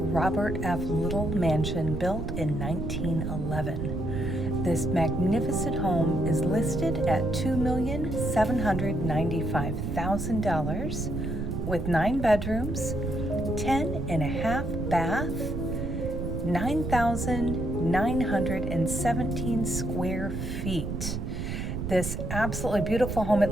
F. Little mansion built in 1911. This magnificent home is listed at $2,795,000 with 9 bedrooms, 10 and a half bath, 9,917 square feet. This absolutely beautiful home, it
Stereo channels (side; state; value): right; noise; rumble, 4 dB below the sound